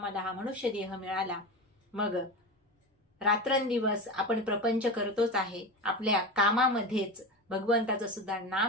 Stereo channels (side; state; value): both; normal; correlation 0.24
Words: हा मनुष्य देह मिळाला. मग रात्रंदिवस आपण प्रपंच करतोच आहे, आपल्या कामामध्येच भगवंताचं सुद्धा